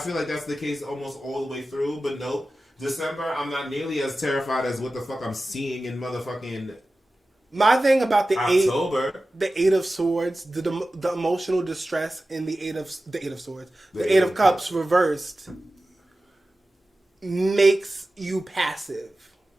like that's the case almost all the way through, but nope. December, I'm not nearly as terrified as what the fuck I'm seeing in motherfucking my thing about the October. The 8 of Swords, the emotional distress in the 8 of Swords, the 8 of Cups reversed makes you passive.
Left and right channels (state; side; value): normal; both; correlation 0.95